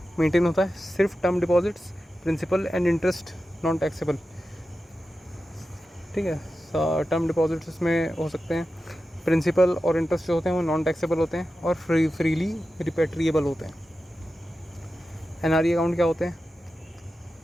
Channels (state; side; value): normal; both; correlation 0.92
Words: मेंटेन होता है। सिर्फ term deposits, principal and interest non taxable. ठीक है, टर्म डिपॉजिट्स इसमें हो सकते हैं, प्रिंसिपल और इंटरेस्ट जो होते हैं वो नॉन टैक्सेबल होते हैं और फ्रीली रिपेट्रिएबल होते हैं। एनआरई अकाउंट क्या होते हैं?